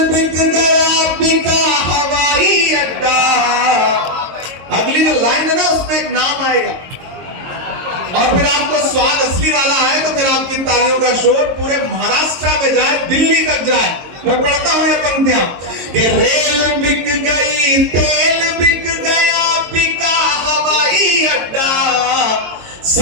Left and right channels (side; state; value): left; late; 22 ms